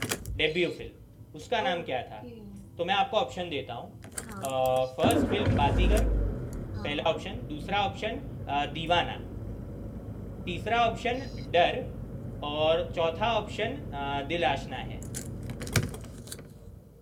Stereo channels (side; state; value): both; identical; correlation 1.00